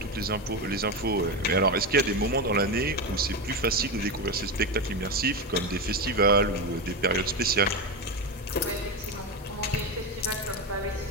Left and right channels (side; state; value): both; normal; correlation 0.15